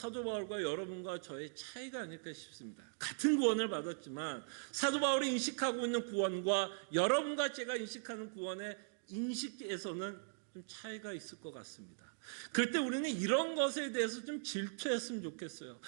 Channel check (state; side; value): silent; left; digital silence